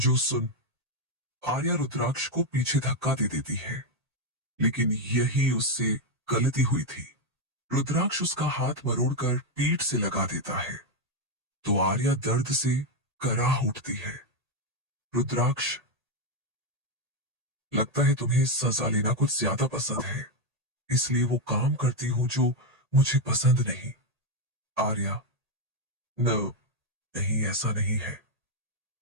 सुन आर्या रुद्राक्ष को पीछे धक्का दे देती है, लेकिन यही उससे गलती हुई थी। रुद्राक्ष उसका हाथ मरोड़कर पीठ से लगा देता है, तो आर्या दर्द से कराह उठती है। रुद्राक्ष, लगता है तुम्हें सजा लेना कुछ ज्यादा पसंद है, इसलिए वो काम करती हूं जो मुझे पसंद नहीं। आर्या, नहीं, ऐसा नहीं है।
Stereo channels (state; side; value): late; left; 1.8 ms